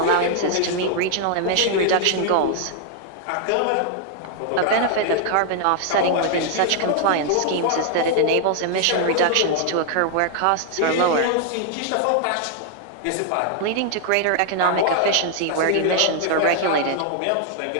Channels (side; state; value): both; different; correlation 0.00